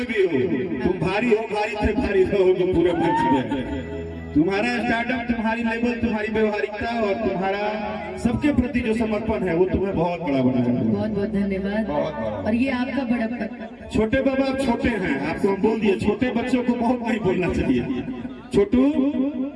भी हो, तुम भारी हो भारी थे भारी रहोगे पूरे मंच में। तुम्हारा स्टार्टअप, तुम्हारी लेवल, तुम्हारी व्यवहारिकता और तुम्हारा सबके प्रति जो समर्पण है वो तुम्हें बहुत बड़ा बनाया। बहुत बहुत धन्यवाद। और ये आपका बड़प्पन। छोटे बाबा आप छोटे हैं, आपको हम बोल दिए छोटे बच्चों को बहुत नहीं बोलना चाहिए। छोटू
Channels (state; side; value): identical; both; correlation 1.00